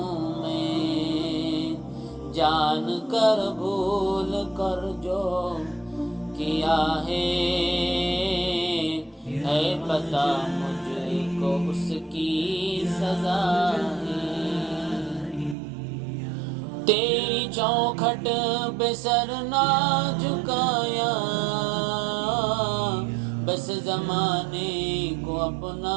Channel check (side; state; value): left; drops out; at 15.6 s